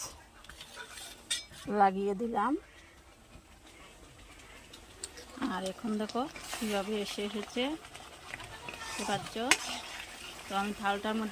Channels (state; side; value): identical; both; correlation 1.00